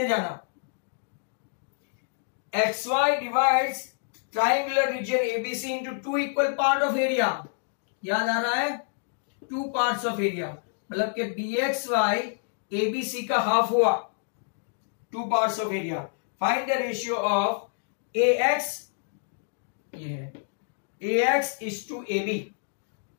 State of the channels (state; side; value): silent; right; digital silence